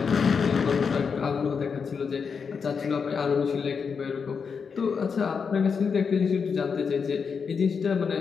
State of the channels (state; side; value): quieter; right; 5.9 dB